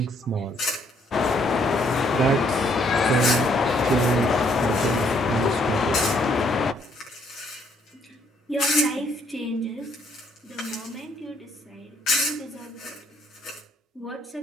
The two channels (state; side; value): normal; both; correlation 0.68